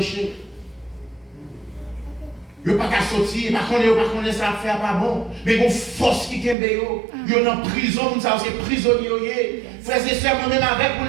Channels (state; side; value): drops out; left; at 6.6 s